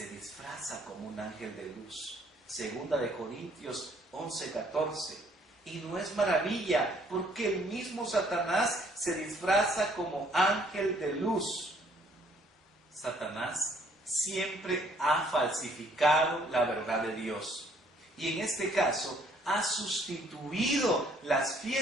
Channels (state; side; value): normal; both; correlation 0.63